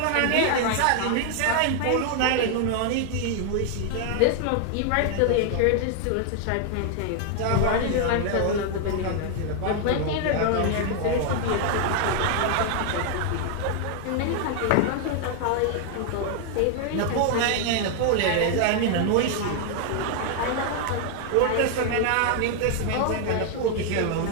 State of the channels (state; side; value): different; both; correlation 0.00